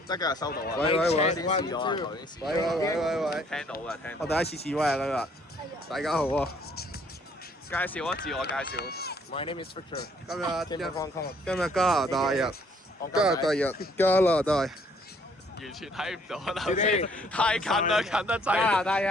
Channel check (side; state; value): both; normal; correlation 0.63